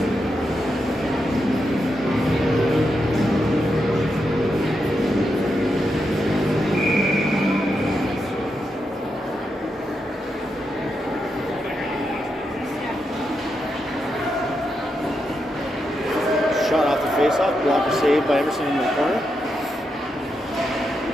Face-off, blocker saved by Emerson in the corner.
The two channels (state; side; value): normal; both; correlation 0.85